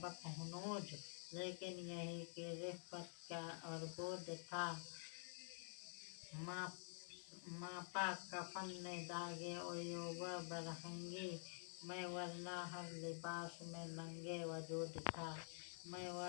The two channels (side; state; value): right; silent; digital silence